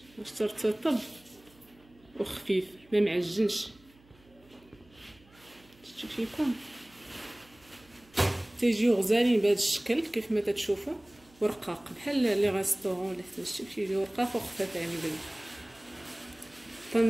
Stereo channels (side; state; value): right; noise; hum, 28 dB below the sound